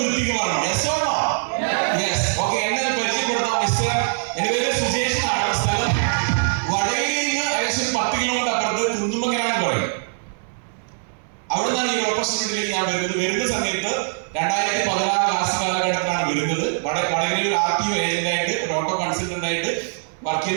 പറഞ്ഞു. എന്നെ പരിചയപ്പെടുത്താം. മിസ്റ്റർ, എന്റെ പേര് സുജേഷ് ആണ്. സ്ഥലം വടകരയിൽ നിന്ന് ഏകദേശം 10 കിലോമീറ്റർ അപ്പുറത്ത് കുന്നുമ്മക്കരാന്ന് പറയും. അവിടെ നിന്നാണ് ഈ ഓപ്പർച്യൂണിറ്റിയിലേക്ക് ഞാൻ വരുന്ന സമയത്ത് 2016 ക്ലാസ് കാലഘട്ടത്തിലാണ് വരുന്നത്. വടകരയിൽ ഒരു RTO ഏജന്റായിട്ട്, ഒരു ഓട്ടോ കൺസൾട്ടന്റ് ആയിട്ട് വർക്ക്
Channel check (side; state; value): left; silent; 64 dB below the other